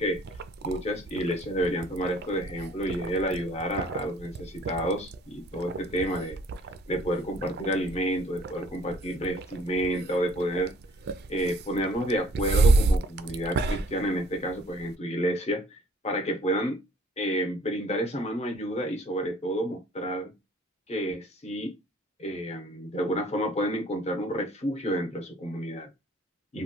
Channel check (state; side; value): normal; both; correlation 0.57